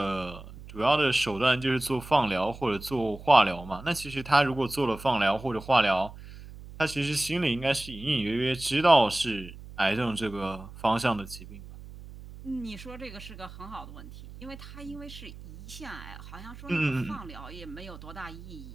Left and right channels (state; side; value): noise; right; hum, 15 dB below the sound